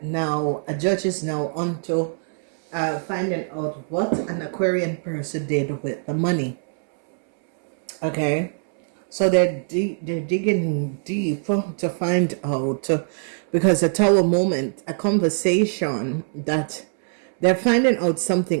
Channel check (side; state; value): left; silent; 64 dB below the other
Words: now, a judge is now onto finding out what an Aquarian person did with the money. Okay, so they're digging deep to find out, because a tower moment, a conversation, that they're finding out